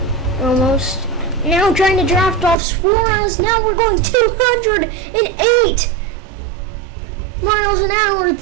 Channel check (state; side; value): drops out; left; at 2.6 s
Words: almost. Now trying to draft off Suarez. Now we're going 208 miles an hour.